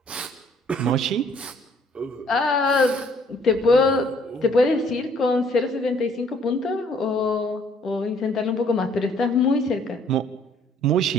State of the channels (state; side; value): normal; both; correlation 0.62